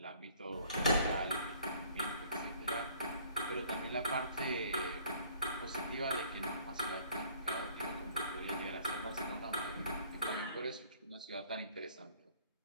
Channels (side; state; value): both; inverted; correlation -0.57